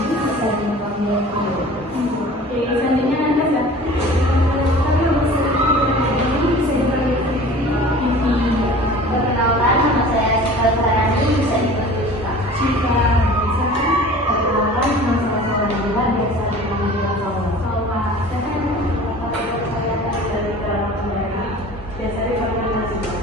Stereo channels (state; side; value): normal; both; correlation 0.43